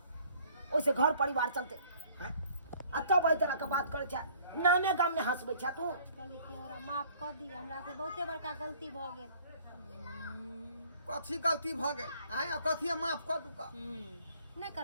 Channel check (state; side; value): inverted; both; correlation -0.57